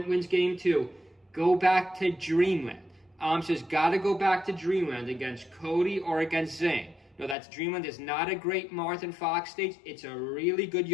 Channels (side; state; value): right; drops out; at 7.4 s